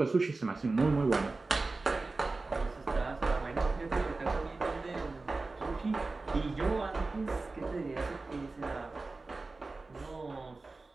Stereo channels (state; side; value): quieter; left; 3.5 dB